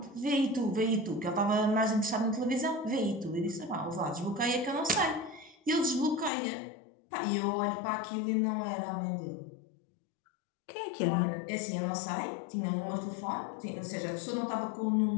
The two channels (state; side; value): drops out; right; at 6.3 s